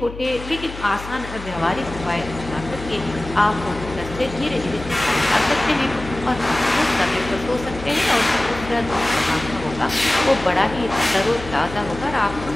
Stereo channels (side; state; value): left; noise; hum, 12 dB below the sound